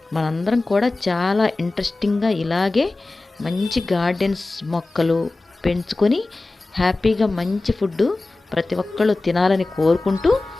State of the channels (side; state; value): right; quieter; 3.2 dB